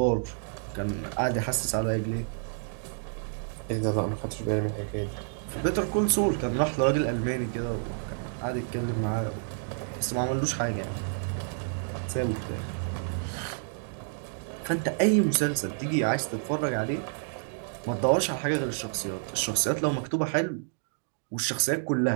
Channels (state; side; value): silent; left; digital silence